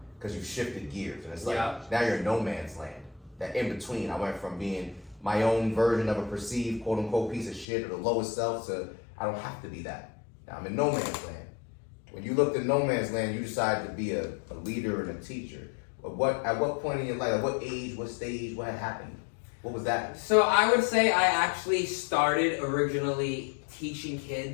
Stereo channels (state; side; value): drops out; right; at 7.7 s